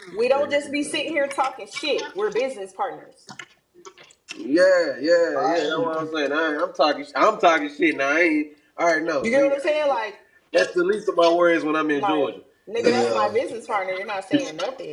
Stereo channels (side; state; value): both; identical; correlation 1.00